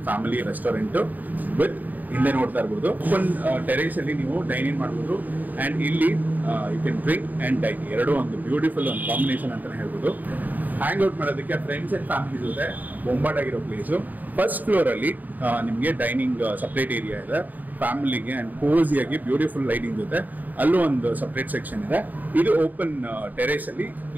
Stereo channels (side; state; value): left; late; 0.083 ms